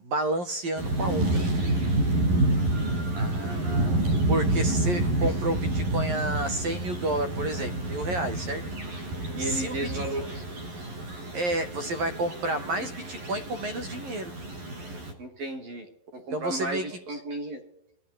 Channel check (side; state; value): left; late; 11 ms